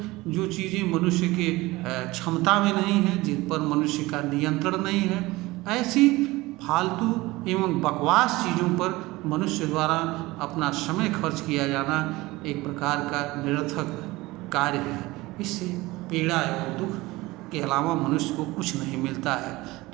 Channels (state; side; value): quieter; left; 20.3 dB